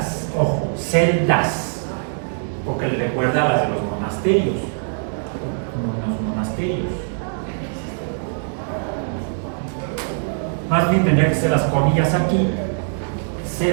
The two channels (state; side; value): silent; left; digital silence